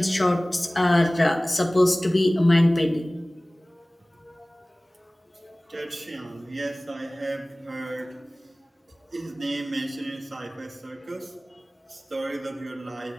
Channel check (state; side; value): normal; both; correlation 0.98